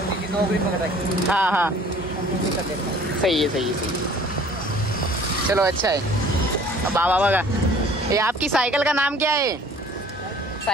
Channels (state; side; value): normal; both; correlation 0.51